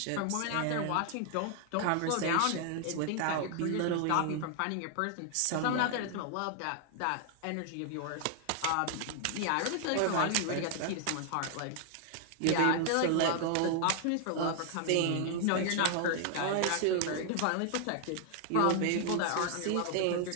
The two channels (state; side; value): different; both; correlation 0.00